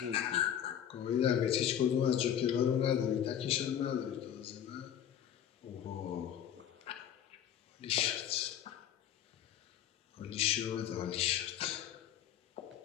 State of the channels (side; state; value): right; quieter; 9.9 dB